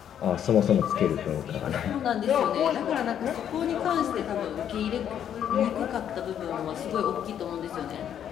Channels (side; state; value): right; quieter; 9.5 dB